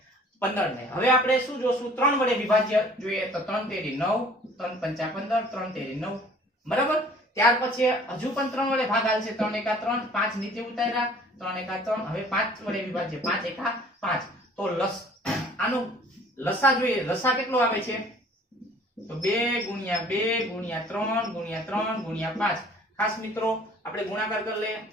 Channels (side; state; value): both; normal; correlation 0.52